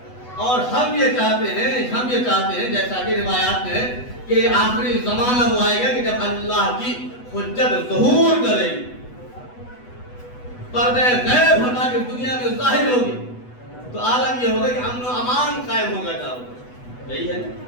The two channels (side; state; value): right; late; 8.1 ms